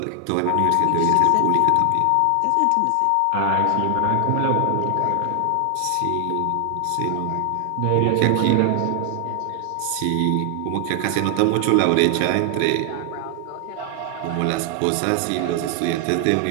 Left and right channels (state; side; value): different; both; correlation 0.00